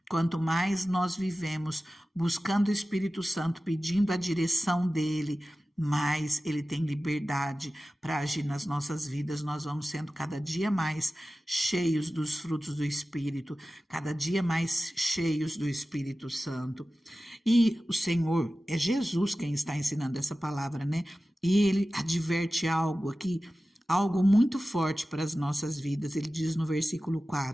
Quanto mais nós vivemos buscando o Espírito Santo, pedindo a direção dele, mais ele tem liberdade para agir nas nossas vidas. Nós vamos sendo cada dia mais cheios dos frutos do Espírito, cada dia mais cheios do Espírito Santo. E o Senhor, é Jesus quem está ensinando essa palavra, né? E ele adverte algo aqui, algo muito forte para as nossas vidas. Ele diz no versículo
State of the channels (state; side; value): normal; both; correlation 0.95